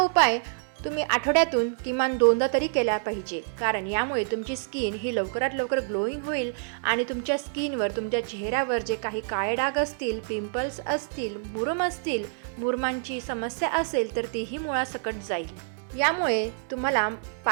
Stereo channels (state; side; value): silent; left; 60 dB below the other